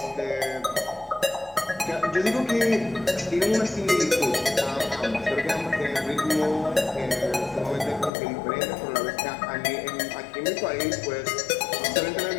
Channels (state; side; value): drops out; right; at 8.1 s